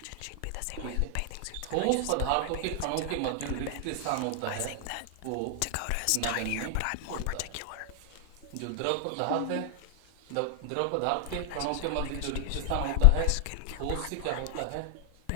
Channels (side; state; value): both; different; correlation 0.00